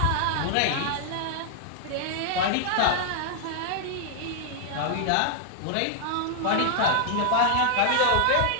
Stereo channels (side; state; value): both; different; correlation -0.01